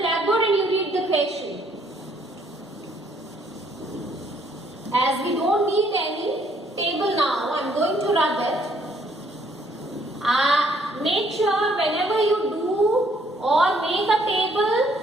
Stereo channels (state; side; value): normal; both; correlation 0.66